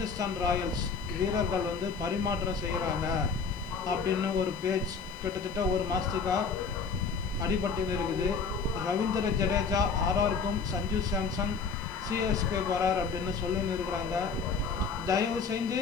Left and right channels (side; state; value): right; quieter; 5.2 dB